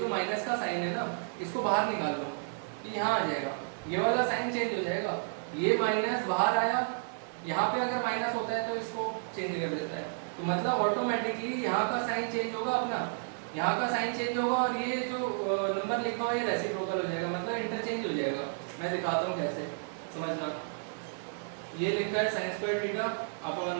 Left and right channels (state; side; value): silent; left; digital silence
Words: माइनस का साइन है ना, इसको बाहर निकाल लो, ये यहाँ आ जाएगा, ये वाला साइन चेंज हो जाएगा, ये माइनस बाहर आया, यहाँ पे अगर माइनस होता है तो इसको चेंज कर देता है। तो मतलब ऑटोमेटिकली यहाँ का साइन चेंज होगा, अपना यहाँ का साइन चेंज होगा, और ये जो नंबर लिखा हुआ है ये रेसिप्रोकल हो जाएगा, मतलब इंटरचेंज हो जाएगा। मैं दिखाता हूँ कैसे, समझना। ये लिखा है sin स्क्वायर थीटा